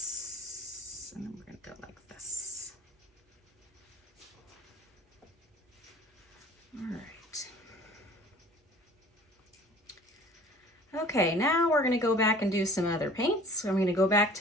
and then we're gonna go like this. All right. Okay, now we're gonna go back and do some other paints. So I'm gonna go back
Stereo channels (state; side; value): normal; both; correlation 0.48